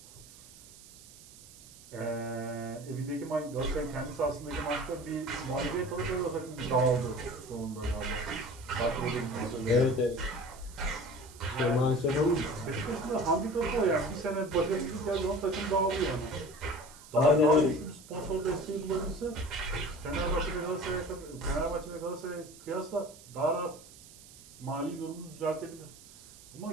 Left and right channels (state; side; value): noise; right; hiss, 20 dB below the sound